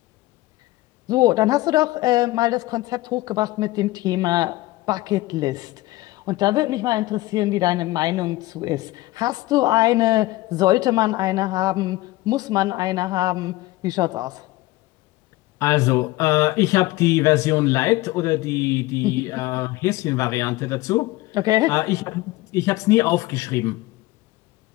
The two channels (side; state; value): right; quieter; 18.9 dB